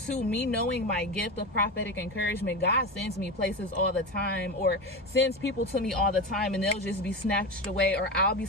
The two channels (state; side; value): normal; both; correlation 0.22